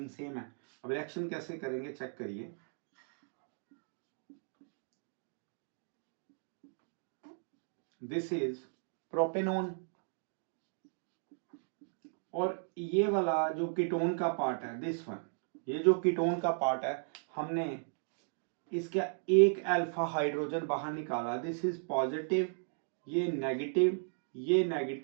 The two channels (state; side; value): silent; left; digital silence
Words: सेम है। अब रिएक्शन कैसे करेंगे चेक करिए। दिस इज प्रोपेनॉन, और ये वाला जो कीटोन का पार्ट है दिस वन, ये जो कीटोन का पार्ट है हमने इसका एक अल्फा हाइड्रोजन बाहर निकाला, दिस इज पॉजिटिव, ये नेगेटिव, ये